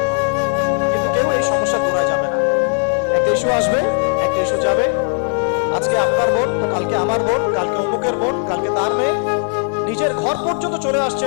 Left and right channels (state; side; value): silent; right; 59 dB below the other